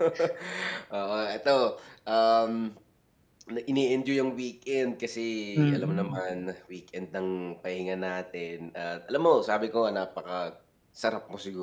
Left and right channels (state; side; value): identical; both; correlation 1.00